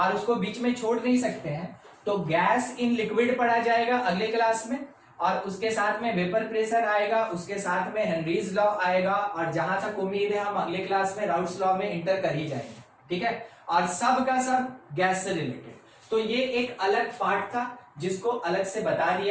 उसको बीच में छोड़ नहीं सकते हैं। तो गैस इन लिक्विड पढ़ा जाएगा अगले क्लास में, और उसके साथ में वेपर प्रेशर आएगा, उसके साथ में हेनरीज लॉ आएगा, और जहां तक उम्मीद है हम अगले क्लास में राउट्स लॉ में इंटर कर ही जाएंगे। ठीक है, और सब का सब गैस से रिलेटेड। तो ये एक अलग पार्ट था जिसको अलग से बता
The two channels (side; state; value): both; identical; correlation 1.00